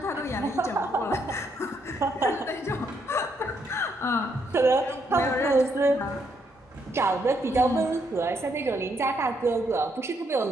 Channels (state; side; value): normal; both; correlation 0.75